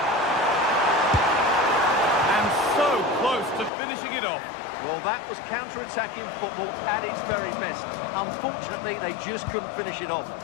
So close to finishing it off. Well, that was counter-attacking football at its very best. Unfortunately, they just couldn't finish it off.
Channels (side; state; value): right; drops out; at 3.7 s